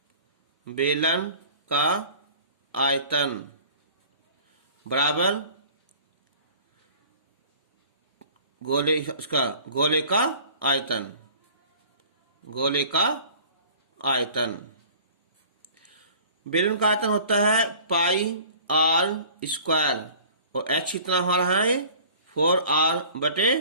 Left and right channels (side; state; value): both; inverted; correlation -0.47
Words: बेलन का आयतन बराबर गोले का आयतन, गोले का आयतन। बेलन का आयतन होता है पाई आर स्क्वायर, और h कितना हमारा है